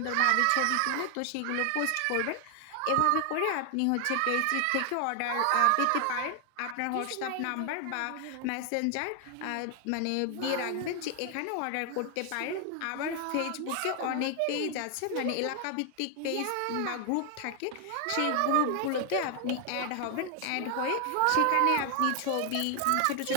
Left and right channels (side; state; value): both; different; correlation 0.00